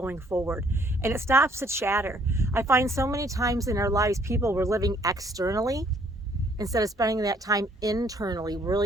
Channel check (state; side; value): normal; both; correlation 0.63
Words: forward. And it stops the chatter. I find so many times in our lives, people were living externally instead of spending that time internally,